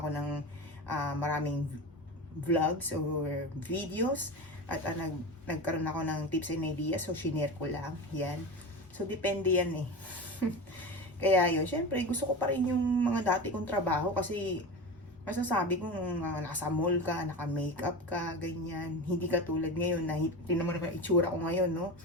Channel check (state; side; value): normal; both; correlation 0.26